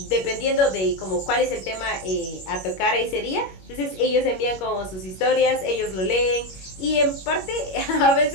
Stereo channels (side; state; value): right; late; 21 ms